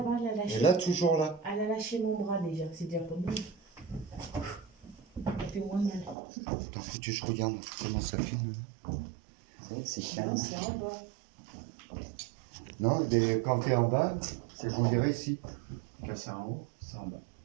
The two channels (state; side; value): drops out; left; at 6.2 s